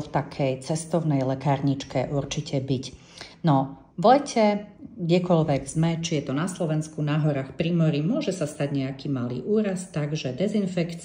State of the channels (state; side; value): identical; both; correlation 1.00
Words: v takej cestovnej lekárničke určite byť? No, v lete, kdekoľvek sme, či je to na Slovensku, na horách, pri mori, môže sa stať nejaký malý úraz, takže